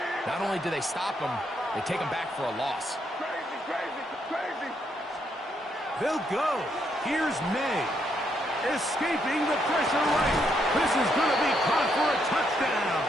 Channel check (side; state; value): both; normal; correlation 0.76